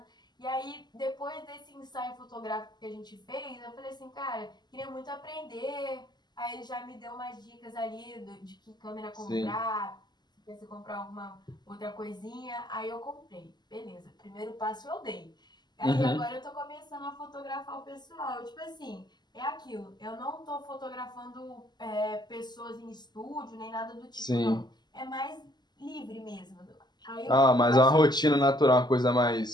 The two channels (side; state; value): right; late; 0.21 ms